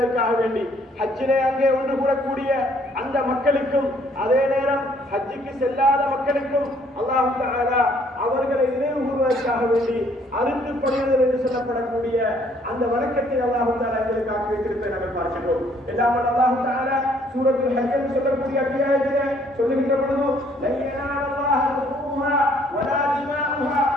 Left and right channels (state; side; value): normal; both; correlation 0.63